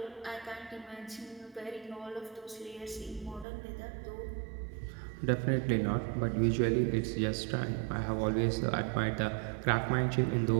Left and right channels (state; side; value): drops out; left; at 3.5 s